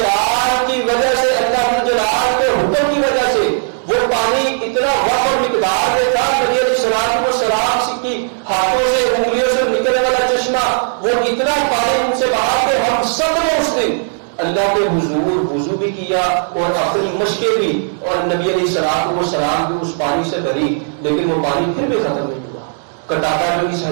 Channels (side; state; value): left; silent; digital silence